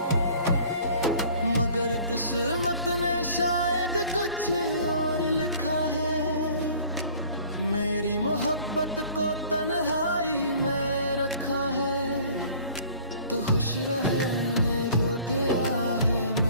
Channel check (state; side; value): inverted; both; correlation -0.50